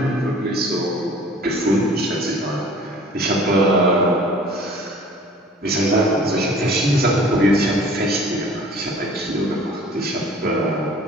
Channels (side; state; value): both; normal; correlation 0.49